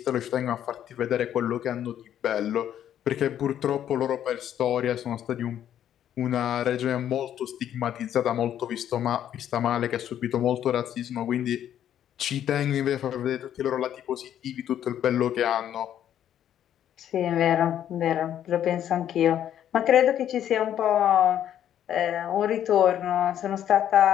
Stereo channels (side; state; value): right; quieter; 10.5 dB